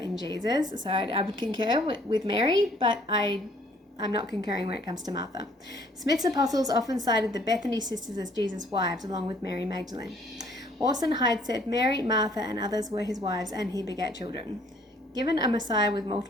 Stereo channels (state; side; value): normal; both; correlation 0.61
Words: Jesus. So I would concur with Mary, but I'm not concurring when it comes to Martha. Smith's apostles often cited the Bethany sisters as Jesus' wives, along with Mary Magdalene. Orson Hyde said Mary, Martha, and others were his wives, and he begat children. Given a Messiah with